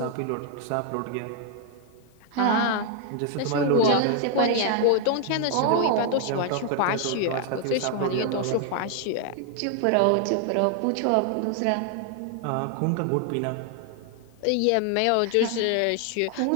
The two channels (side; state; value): both; different; correlation 0.00